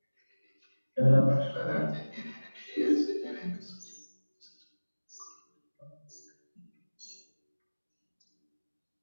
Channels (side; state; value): both; inverted; correlation -1.00